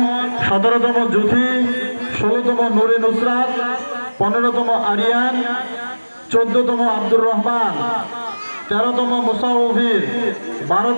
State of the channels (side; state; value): both; inverted; correlation -1.00